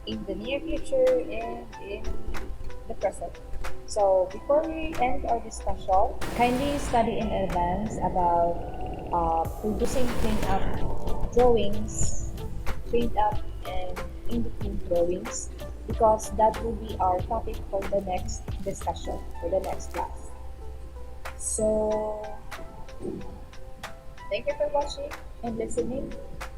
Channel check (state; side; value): identical; both; correlation 1.00